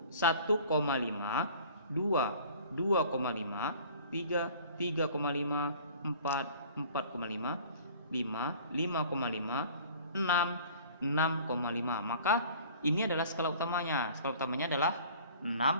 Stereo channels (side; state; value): both; inverted; correlation -0.48